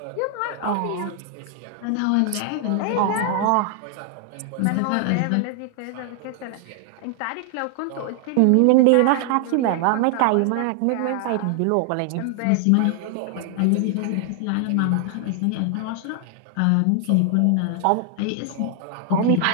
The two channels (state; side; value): different; both; correlation 0.00